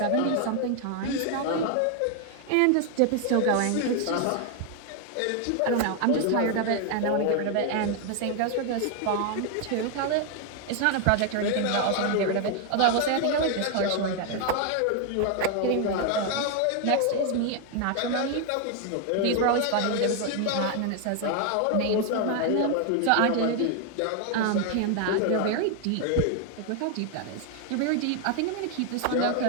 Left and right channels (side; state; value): both; different; correlation 0.00